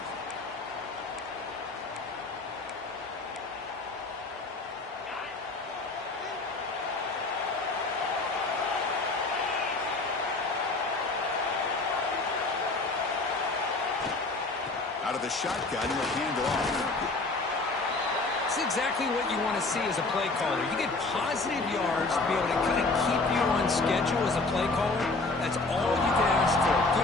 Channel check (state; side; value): quieter; right; 3.4 dB